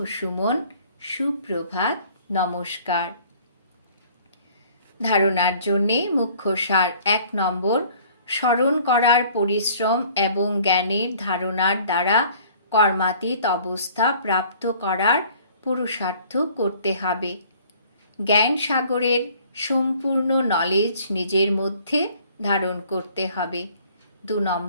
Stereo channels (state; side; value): inverted; both; correlation -0.54